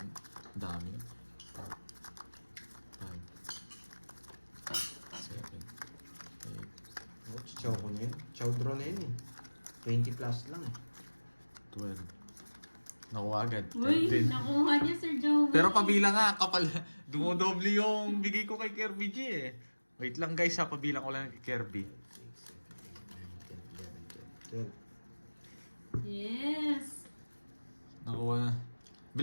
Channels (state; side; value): inverted; both; correlation -1.00